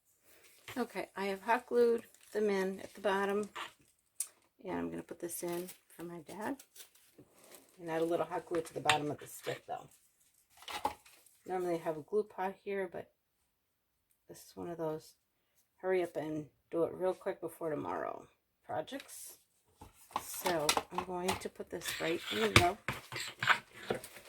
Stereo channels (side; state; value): both; identical; correlation 1.00